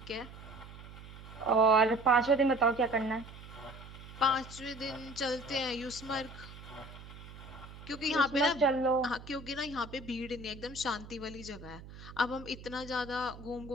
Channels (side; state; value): right; noise; hum, 15 dB below the sound